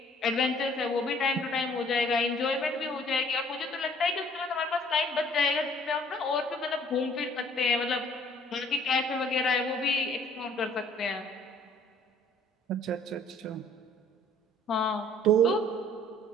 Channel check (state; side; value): normal; both; correlation 0.57